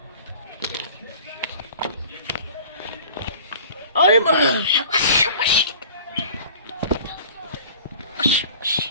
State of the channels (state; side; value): inverted; both; correlation -0.45